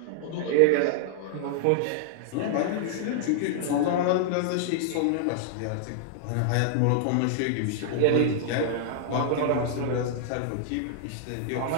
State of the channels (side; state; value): both; different; correlation -0.01